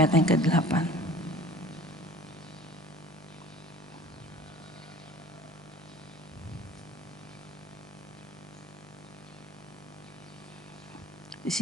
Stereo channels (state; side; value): normal; both; correlation 0.46